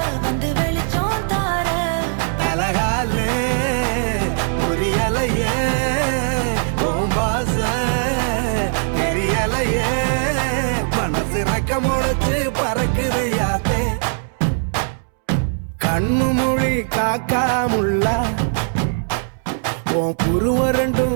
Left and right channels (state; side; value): silent; left; 66 dB below the other